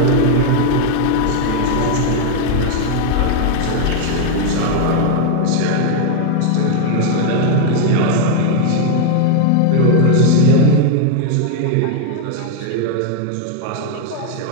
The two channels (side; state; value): both; different; correlation 0.00